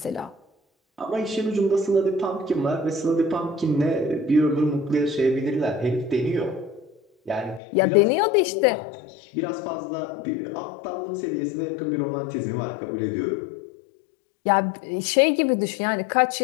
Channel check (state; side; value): drops out; right; at 7.6 s